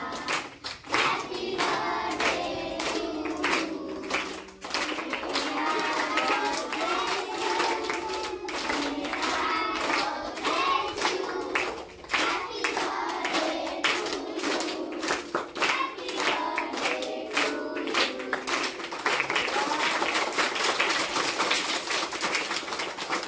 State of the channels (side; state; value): both; identical; correlation 1.00